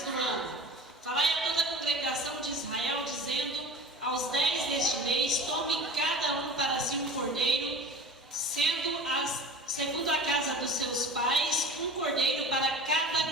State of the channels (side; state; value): both; normal; correlation 0.37